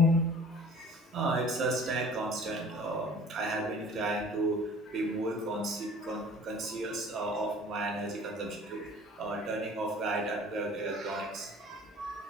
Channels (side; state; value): both; normal; correlation 0.48